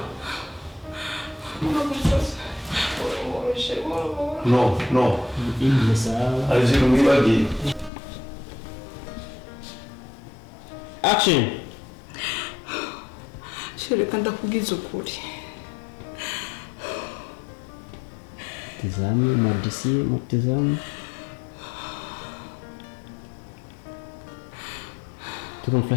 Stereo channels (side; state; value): right; drops out; at 7.9 s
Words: No. Alizirumiwagi. Action. Shirika ndakugiza ukuri. Tazame madisi mtazame. Tuko